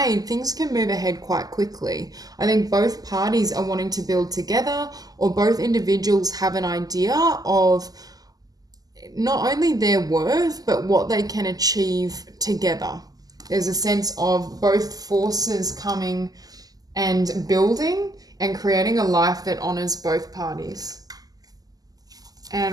things can move ahead quite quickly. I think both parties are wanting to build together, or both individuals have an idea of not only their worth, but what they can achieve together. There's a sense of both forces coming and building and creating a life that honors both parties.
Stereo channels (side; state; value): left; late; 0.18 ms